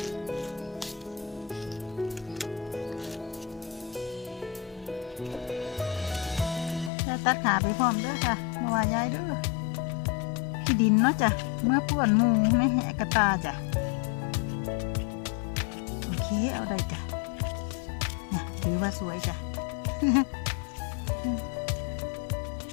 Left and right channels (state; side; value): drops out; right; at 6.9 s